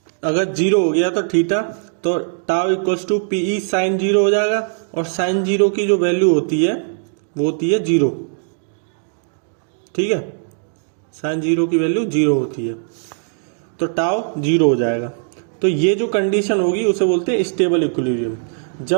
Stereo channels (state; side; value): silent; left; digital silence